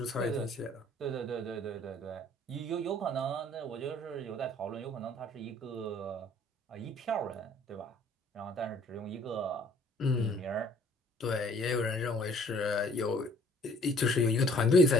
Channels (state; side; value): normal; both; correlation 0.56